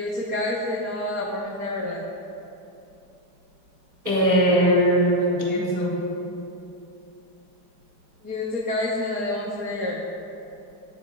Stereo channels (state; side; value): late; left; 4.9 ms